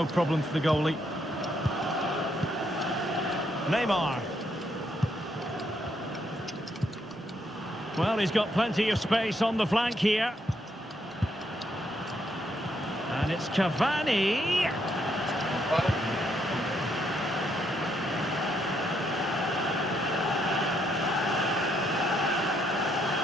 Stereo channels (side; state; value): both; normal; correlation 0.75